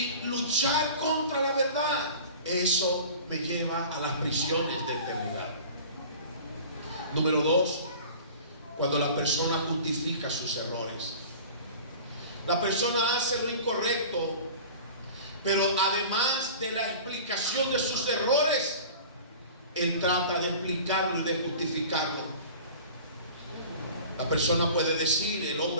luchar contra la verdad, eso me lleva a las prisiones de eternidad. Número 2, cuando la persona justifica sus errores. La persona hace lo incorrecto, pero además de la explicación de sus errores, él trata de explicarlo y de justificarlo. La persona puede decir, el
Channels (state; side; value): inverted; both; correlation -0.41